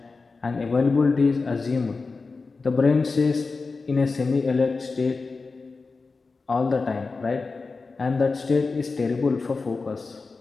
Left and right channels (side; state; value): right; quieter; 4.1 dB